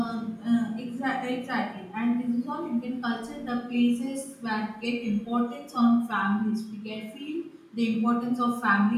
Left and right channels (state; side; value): identical; both; correlation 1.00